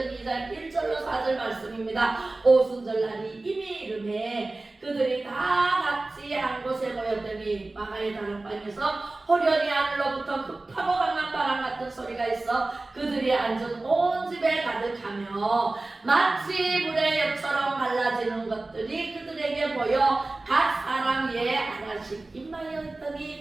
2장 1절로 4절 말씀입니다. 오순절날이 이미 이름에 그들이 다 같이 한 곳에 모였더니 마가의 다락방에서 호련히 하늘로부터 급하고 강한 바람 같은 소리가 있어 그들이 앉은 온 집에 가득하며 마치 물의 엽처럼 갈라지는 것들이 그들에게 보여 각 사람 위에 하나씩 임하여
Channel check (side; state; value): left; quieter; 3.1 dB